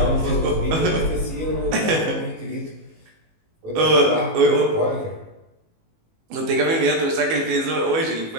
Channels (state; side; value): late; left; 19 ms